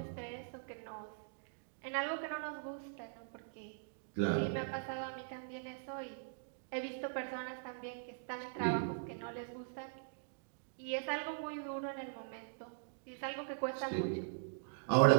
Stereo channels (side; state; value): left; silent; digital silence